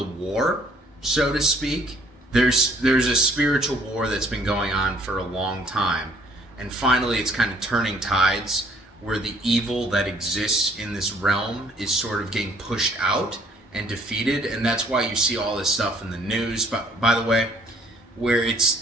war, so to speak. There's a spiritual war that's been going on for a long time, and finally it's kind of turning tides where the evil that exists in this realm is sort of getting pushed out and defeated, and that's why you see all this stuff in the news, by the way, where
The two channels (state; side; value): normal; both; correlation 0.61